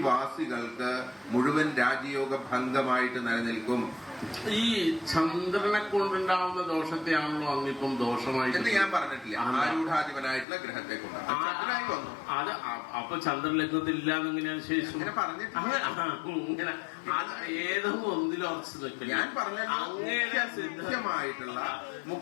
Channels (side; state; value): right; drops out; at 10.5 s